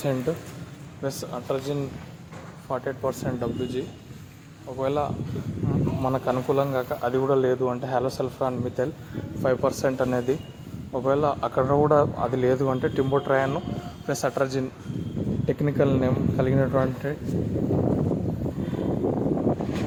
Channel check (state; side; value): identical; both; correlation 1.00